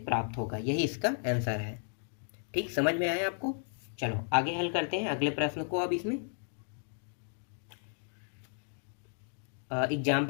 प्राप्त होगा। यही इसका आंसर है। ठीक, समझ में आया आपको। चलो आगे हल करते हैं अगले प्रश्न को। अब इसमें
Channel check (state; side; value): silent; right; 55 dB below the other